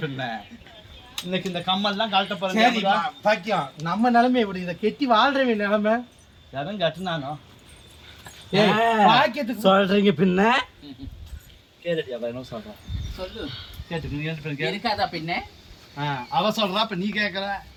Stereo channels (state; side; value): identical; both; correlation 1.00